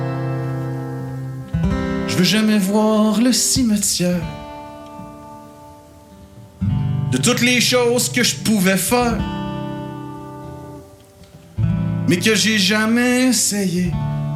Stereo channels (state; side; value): identical; both; correlation 1.00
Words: Je veux jamais voir le cimetière de toutes les choses que je pouvais faire, mais que j'ai jamais essayé